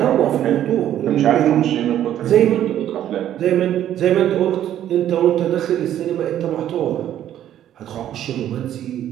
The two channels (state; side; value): quieter; left; 11.3 dB